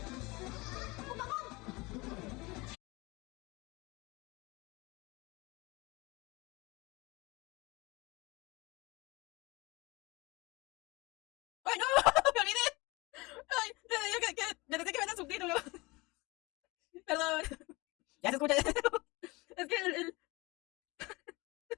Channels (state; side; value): quieter; right; 23.9 dB